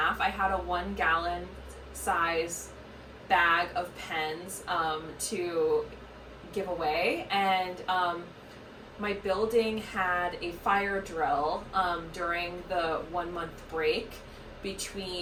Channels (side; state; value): both; identical; correlation 1.00